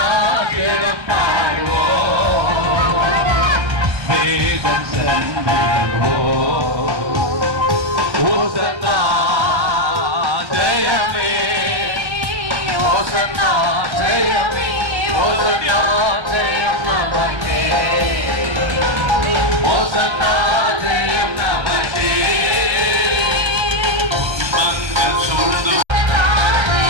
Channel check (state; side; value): late; left; 1.3 ms